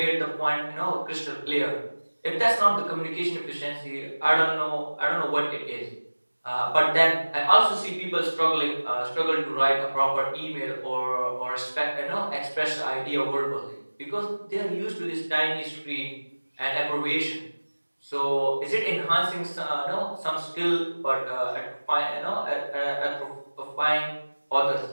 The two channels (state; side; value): inverted; both; correlation -1.00